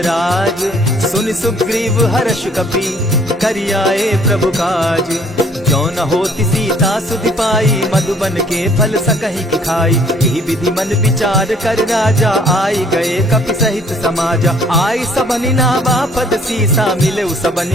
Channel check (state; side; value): normal; both; correlation 0.59